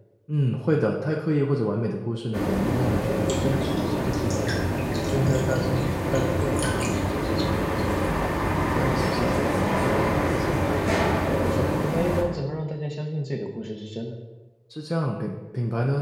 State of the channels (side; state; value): both; identical; correlation 1.00